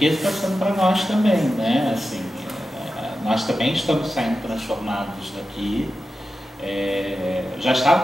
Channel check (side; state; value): both; normal; correlation 0.92